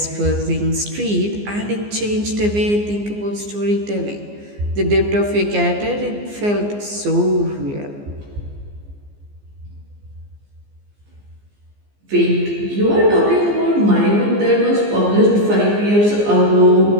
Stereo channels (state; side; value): late; left; 15 ms